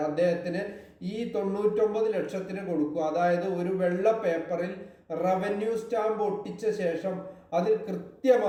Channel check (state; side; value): identical; both; correlation 1.00